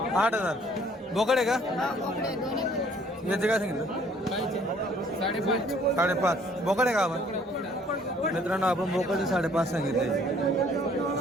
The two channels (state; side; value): normal; both; correlation 0.59